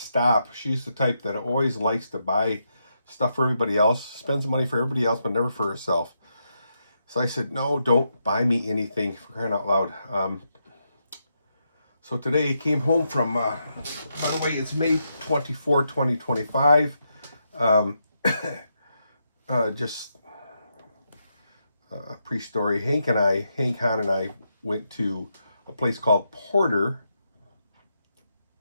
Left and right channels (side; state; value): both; inverted; correlation -0.82